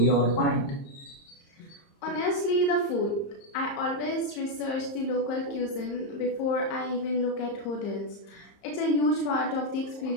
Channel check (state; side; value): late; right; 30 ms